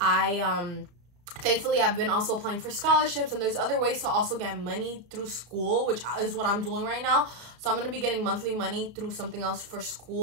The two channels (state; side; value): late; left; 34 ms